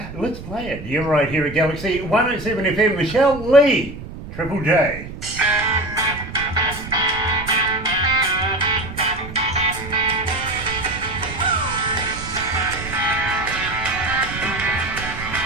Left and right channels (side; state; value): right; noise; rumble, 11 dB below the sound